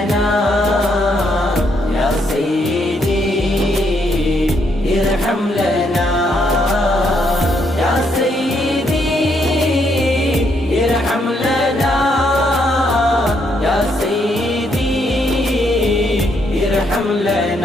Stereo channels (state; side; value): normal; both; correlation 0.74